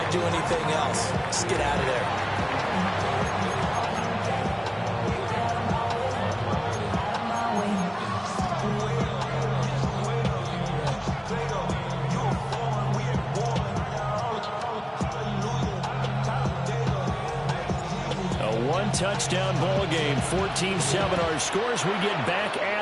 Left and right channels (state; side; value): identical; both; correlation 1.00